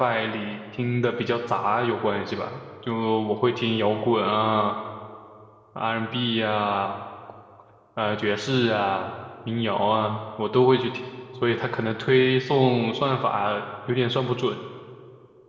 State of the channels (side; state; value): both; identical; correlation 1.00